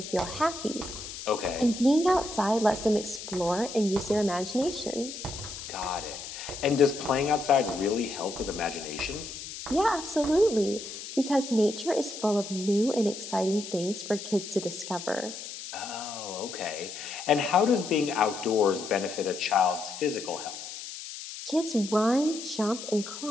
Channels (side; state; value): left; noise; hiss, 10 dB below the sound